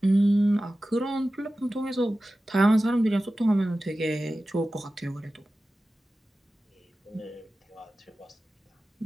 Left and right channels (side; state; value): both; normal; correlation 0.95